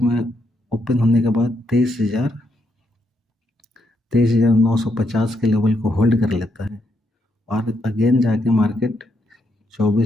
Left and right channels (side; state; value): both; normal; correlation 0.78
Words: ओपन होने के बाद 23,950 के लेवल को होल्ड कर लेता है और अगेन जाके मार्केट